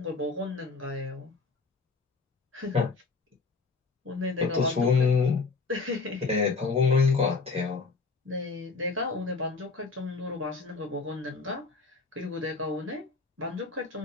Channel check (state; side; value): quieter; right; 4.2 dB